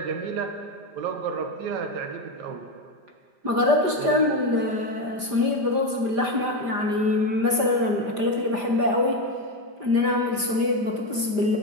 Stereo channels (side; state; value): left; late; 5.0 ms